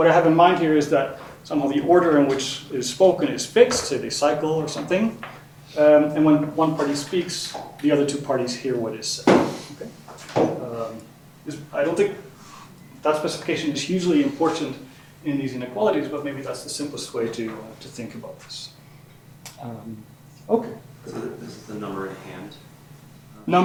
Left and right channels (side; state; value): both; identical; correlation 1.00